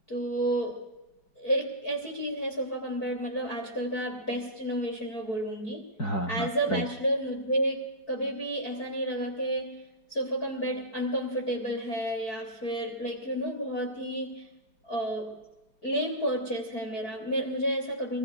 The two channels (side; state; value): right; late; 4.5 ms